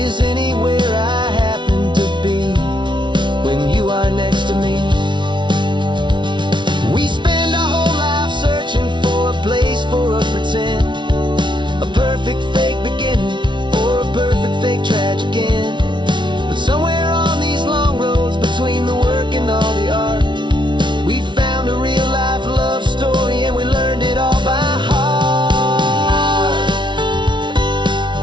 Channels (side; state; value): left; late; 0.23 ms